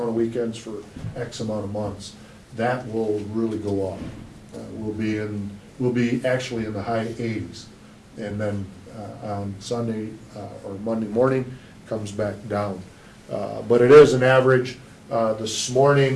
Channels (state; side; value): identical; both; correlation 1.00